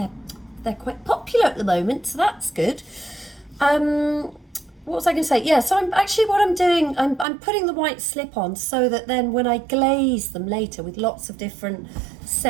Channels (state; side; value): drops out; left; at 7.2 s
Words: They're quite popular at the moment, so that's good. What was I going to say? Yeah, so I'm putting the white slip on so that then when I glaze them later with lots of different